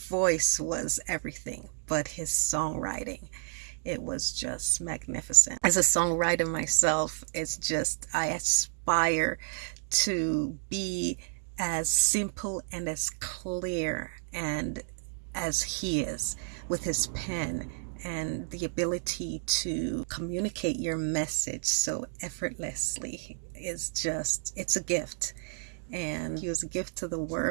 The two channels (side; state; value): left; silent; digital silence